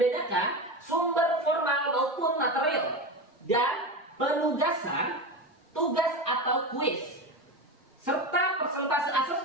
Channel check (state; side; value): normal; both; correlation 0.22